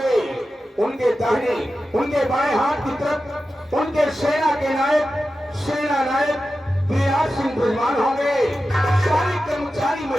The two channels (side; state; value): both; normal; correlation 0.92